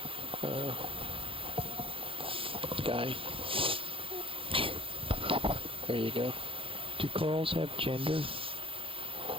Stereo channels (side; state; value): left; late; 0.26 ms